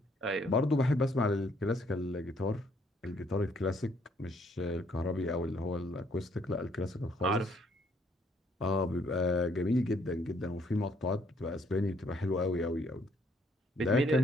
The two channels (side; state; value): both; normal; correlation 0.67